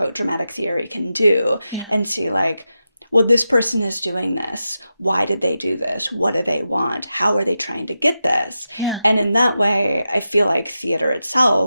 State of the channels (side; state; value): both; inverted; correlation -0.90